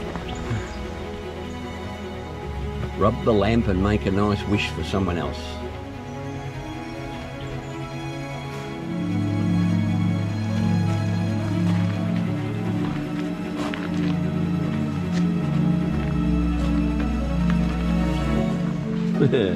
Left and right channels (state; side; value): identical; both; correlation 1.00